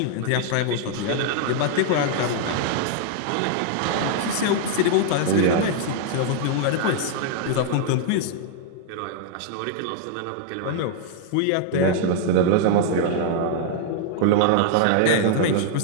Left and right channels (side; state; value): both; different; correlation 0.00